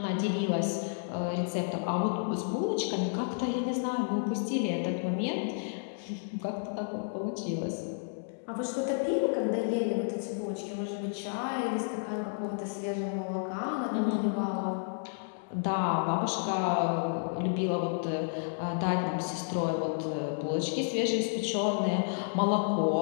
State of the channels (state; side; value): silent; right; digital silence